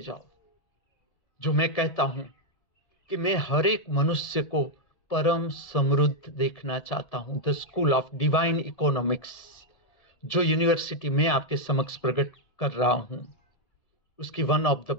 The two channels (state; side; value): late; right; 1.7 ms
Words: जो मैं कहता हूं कि मैं हर एक मनुष्य को परम समृद्ध देखना चाहता हूं। The school of divine economics, जो यूनिवर्सिटी में आपके समक्ष प्रकट कर रहा हूं, उसकी one of the